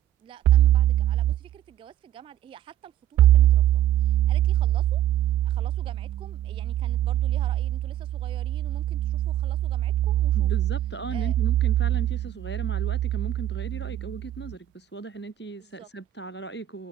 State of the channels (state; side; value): quieter; left; 12.3 dB